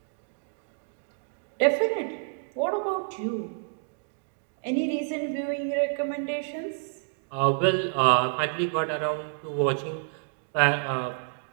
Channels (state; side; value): silent; left; digital silence